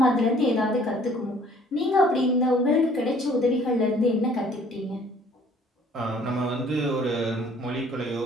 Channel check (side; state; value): both; normal; correlation 0.56